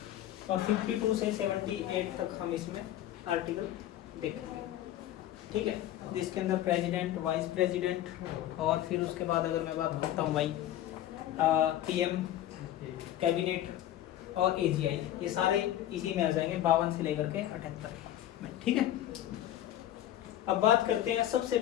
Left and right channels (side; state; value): right; quieter; 12.7 dB